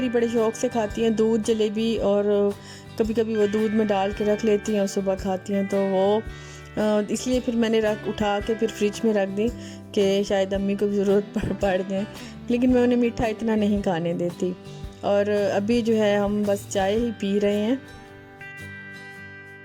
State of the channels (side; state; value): both; identical; correlation 1.00